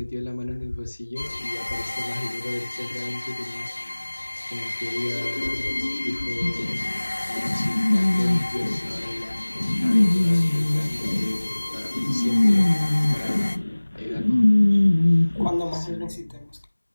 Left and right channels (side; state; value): both; inverted; correlation -1.00